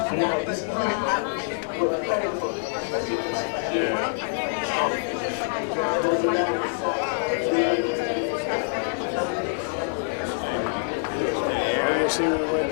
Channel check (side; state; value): right; silent; digital silence